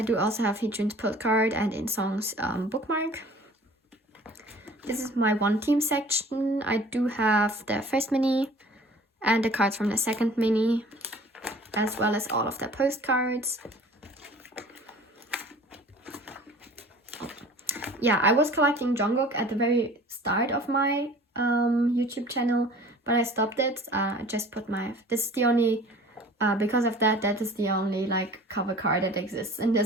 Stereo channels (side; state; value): both; normal; correlation 0.47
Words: do also have Heejun's postcard and In Song's bookmark. This is my One Team section. I do have the first mini and the cards from the second mini, as well as all of the postcards. Yeah, I was collecting Jungkook at the very start of my YouTube channel, but I stopped it. I just put this is the only, because of that is the only like cover card that exists in